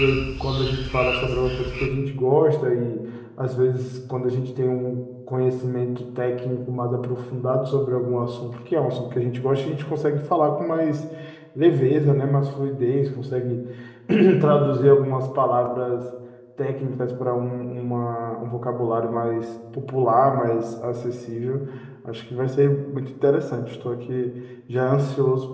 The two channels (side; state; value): both; identical; correlation 1.00